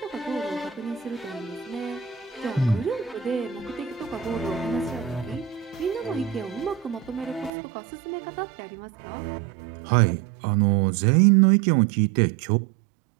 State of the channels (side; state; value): left; drops out; at 7.5 s